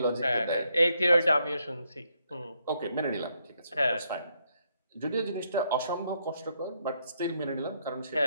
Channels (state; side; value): inverted; both; correlation -0.76